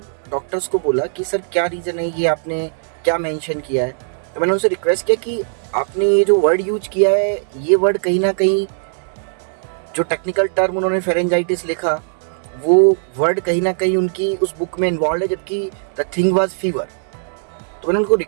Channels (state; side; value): silent; left; digital silence